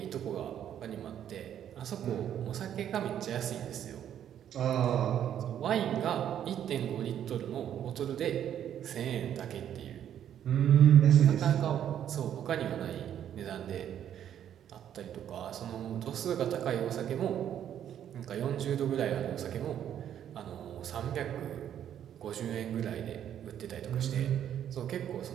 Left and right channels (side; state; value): left; quieter; 10.0 dB